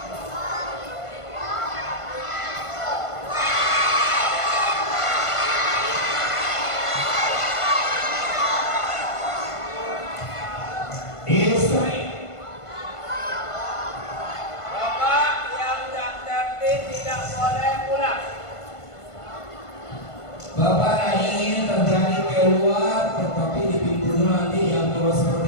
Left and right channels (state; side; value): late; right; 1.5 ms